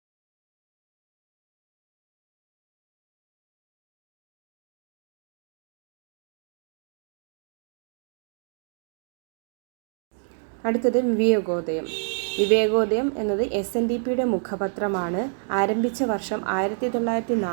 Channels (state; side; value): silent; left; digital silence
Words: അടുത്തത് വിവേകോദയം. വിവേകോദയം എന്നത് SNDPയുടെ മുഖപത്രമാണ്. ആരംഭിച്ച വർഷം